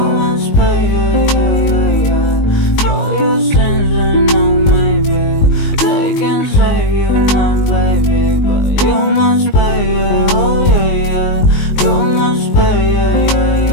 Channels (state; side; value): late; right; 19 ms